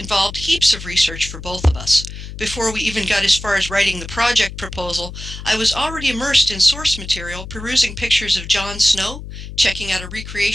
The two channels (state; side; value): noise; left; hum, 11 dB below the sound